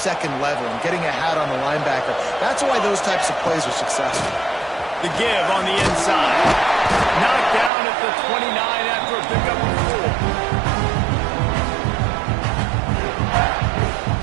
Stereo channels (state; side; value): drops out; left; at 7.7 s